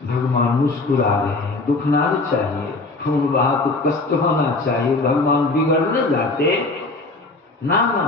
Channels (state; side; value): quieter; right; 3.3 dB